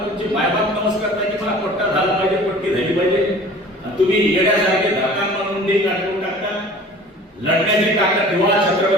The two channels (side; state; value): both; normal; correlation 0.45